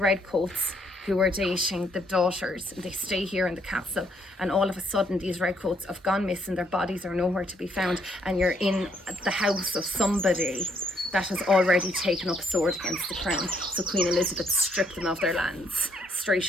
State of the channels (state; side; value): normal; both; correlation 0.70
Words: who are dating the daughters, and they stay here in the castle, and all of a sudden these redcoats have gone missing, their bodies are nowhere to be found, and you're in the house of somebody that has already taken up a sword against the crown. So Queen Elizabeth stripped them of their lands